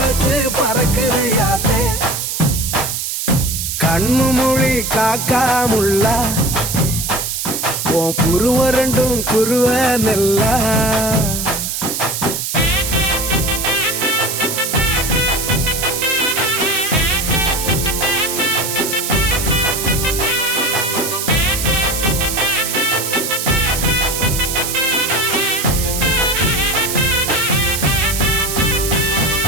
பறக்குதையாத்தே கண்ணு மொழி காக்காமுள்ள உன் குருவ ரெண்டும் குருவ நெல்லா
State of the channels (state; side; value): noise; right; hiss, 3 dB below the sound